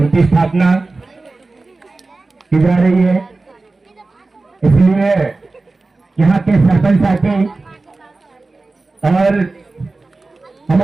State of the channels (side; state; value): left; quieter; 3.4 dB